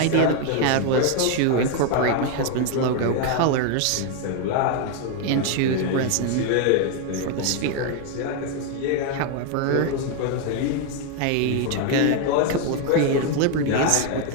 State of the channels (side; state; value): both; different; correlation 0.01